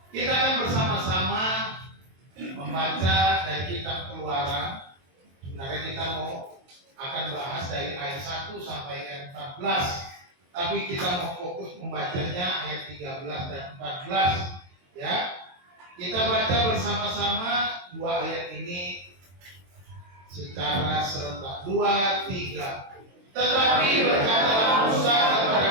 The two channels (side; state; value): left; late; 22 ms